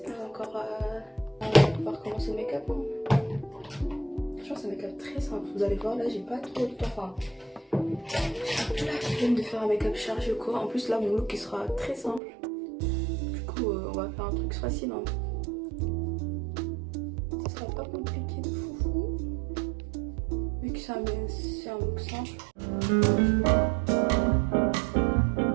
pas encore on va pouvoir commencer le make-up. Hein. Franchement c'est un make-up très simple, vous allez voir là j'ai pas trop de temps. Enfin, j'ai la flemme de faire un make-up chargé ou quoi. En plus là mon look il sera très simple. Du coup on va faire un truc facile. Hein. Ça sera pas compliqué de foufou. Vu que c'est un look simple.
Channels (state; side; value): drops out; left; at 12.2 s